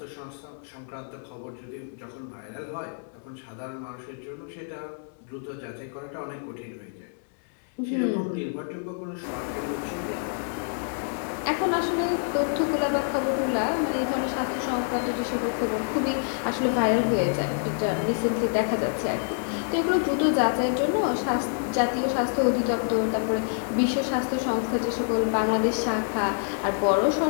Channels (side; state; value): right; silent; 60 dB below the other